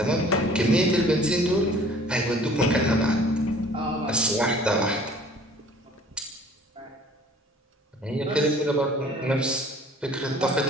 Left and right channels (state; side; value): normal; both; correlation 0.51